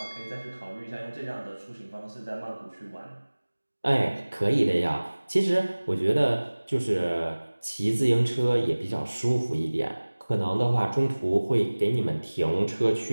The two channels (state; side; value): inverted; both; correlation -1.00